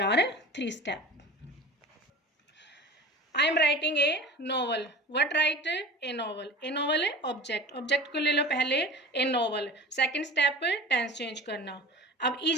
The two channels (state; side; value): normal; both; correlation 0.38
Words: are 3 step. I am writing a novel, what write, a novel. A novel object, object को ले लो पहले, a novel. Second step tense change करना। अब